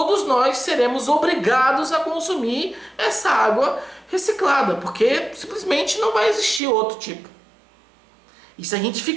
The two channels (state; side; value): drops out; left; at 6.6 s